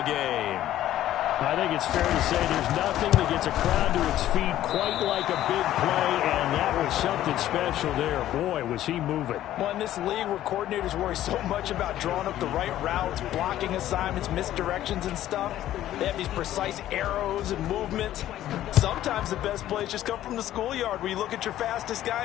game. I think it's fair to say there's nothing that gets a crowd to its feet quite like a big play, and that was something special there. Boy, was he moving. Well, in this league where coordinators worry so much about drawing up the right routes, blocking assignments, misdirections and stuff, they have these precise arrows and movements. Sometimes the best plays just come from the schoolyard where you look at your fastest guy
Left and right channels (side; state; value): right; quieter; 13.0 dB